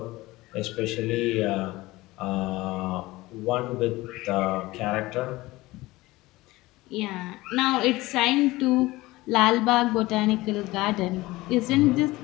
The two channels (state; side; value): quieter; right; 19.6 dB